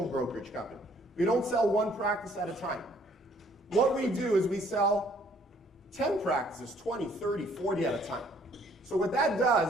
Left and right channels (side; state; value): both; normal; correlation 0.62